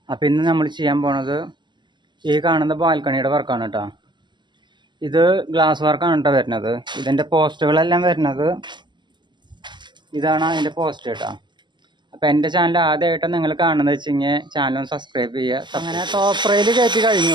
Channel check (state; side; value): late; left; 0.22 ms